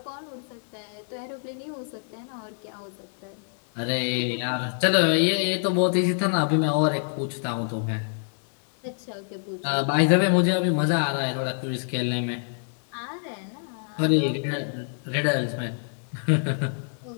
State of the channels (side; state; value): right; silent; digital silence